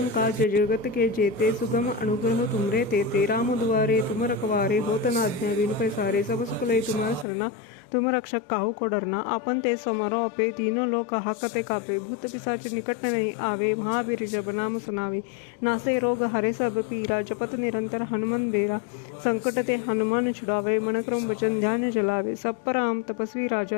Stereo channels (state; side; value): drops out; right; at 7.2 s